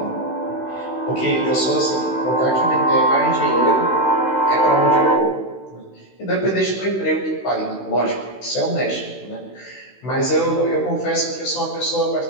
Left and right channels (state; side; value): late; right; 16 ms